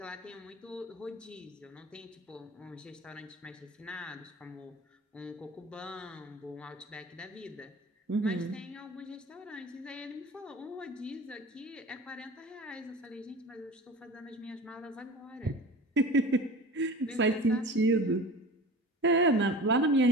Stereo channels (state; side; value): normal; both; correlation 0.36